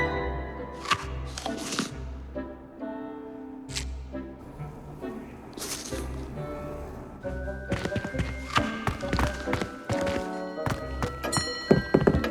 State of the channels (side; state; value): both; identical; correlation 1.00